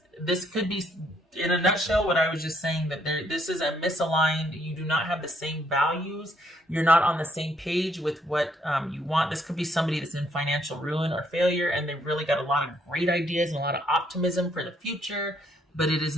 could be, in a nutshell, what I was just saying, that this is a misaligned. You do not have the same values. You're not on the same page with what you want. This could be somebody that's in financial ruin or failure, and they've really got a lot of great ideas and a lot of optimism for the future, but it is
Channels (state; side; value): normal; both; correlation 0.69